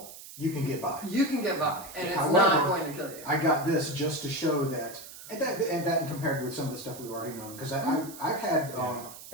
You can get by. you can get by. And it's However, not going to kill you. I got this just to show that, and that compared with some of the stuff we've already known, because I've had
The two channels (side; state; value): right; noise; hiss, 15 dB below the sound